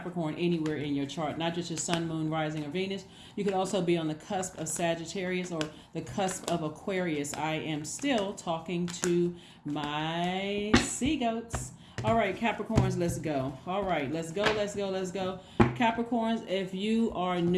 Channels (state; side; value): identical; both; correlation 1.00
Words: anywhere in your chart, not just your sun, moon, rising, or Venus. You could also be on the cusp of Sagittarius or the cusp of Aquarius. I am still talking to my sea goats. All right, Capricorns, let's go. All right, let's go. Capricorns, if you are